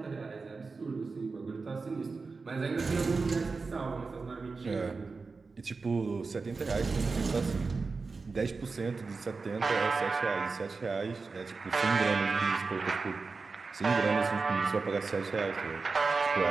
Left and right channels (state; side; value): quieter; left; 4.3 dB